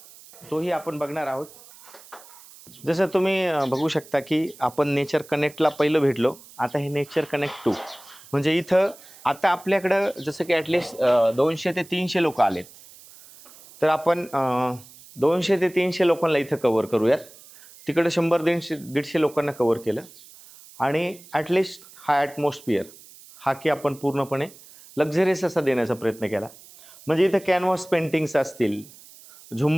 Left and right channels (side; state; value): right; noise; hiss, 21 dB below the sound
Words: तोही आपण बघणार आहोत. जसं तुम्ही बघू शकता, की आपण नेचर कनेक्टला पहिलं भेटलो, आता हे नेचर कनेक्ट 2 म्हणजे इथं आता आपल्याकडं जसं की ॲटलिस्ट 200 ते 300 लोक आलेत. तर आपण 200 ते 300 लोकांना इथं कव्हर करूयात. तिकडं 100-150 लोकांना कव्हर केलं आणि ॲटलिस्ट हा ॲटमॉस्फिअर हा की आपण पूर्णपणे लक्झरियस असा देण्याचा प्रयत्न केला. म्हणजे इथं कॅनव्हास पेंटिंग्स असतील,